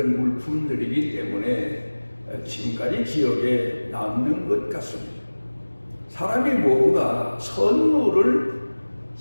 물품들이기 때문에 지금까지 기억에 남는 것 같습니다. 사람이 뭔가 선물을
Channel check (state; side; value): inverted; both; correlation -1.00